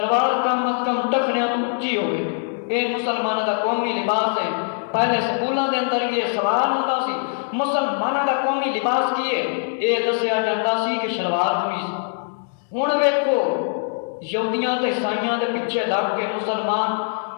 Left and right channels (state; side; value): silent; right; 64 dB below the other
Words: کم از کم ٹکنیاں تو اچھی ہوئے، یہ مسلمانوں کا قومی لباس ہے۔ پہلے سکولوں کے اندر یہ سوال ہوتا سی مسلمانوں کا قومی لباس کی ہے، یہ دسیا جاتا سی کہ شلوار قمیض۔ ہن ویکھو یہودیاں تے عیسائیاں دے پیچھے لگ کے